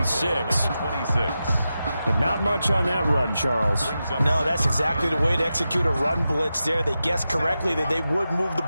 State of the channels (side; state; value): both; inverted; correlation -0.91